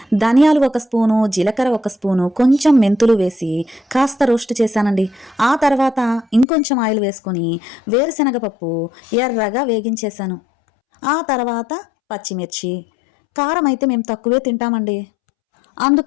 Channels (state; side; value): drops out; right; at 6.5 s